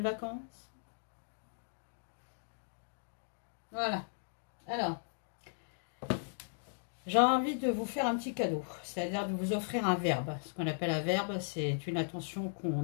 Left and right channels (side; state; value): right; silent; digital silence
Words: vacances. Voilà. Alors, j'ai envie de vous faire un petit cadeau, c'est-à-dire de vous offrir un verbe. Ce qu'on appelle un verbe, c'est une attention qu'on